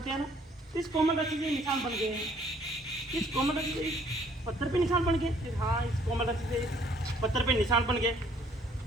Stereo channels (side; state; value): both; normal; correlation 0.62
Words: हैं ना, तो इस कोमल रस्सी से निशान बन गए हैं। इस कोमल रस्सी से इस पत्थर पे निशान बन गए। फिर हाँ, इस कोमल रस्सी से इस पत्थर पे निशान बन गए।